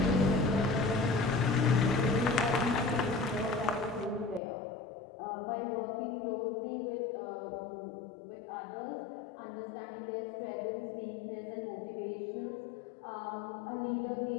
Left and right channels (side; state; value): right; drops out; at 4.4 s